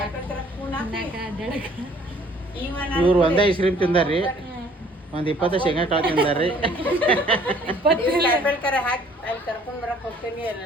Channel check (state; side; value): normal; both; correlation 0.57